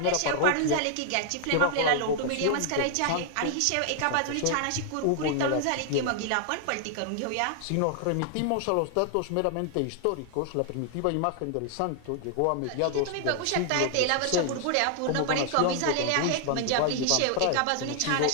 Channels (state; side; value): different; both; correlation 0.00